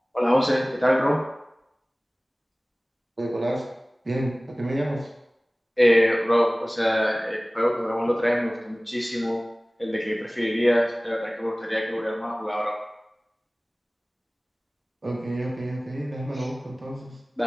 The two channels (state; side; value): normal; both; correlation 0.98